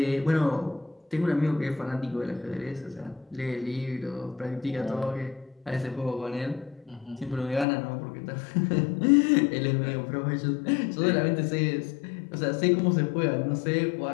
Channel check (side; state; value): right; drops out; at 7.7 s